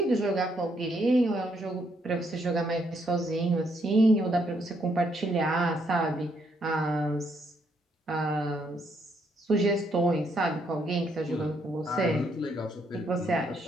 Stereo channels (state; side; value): normal; both; correlation 0.74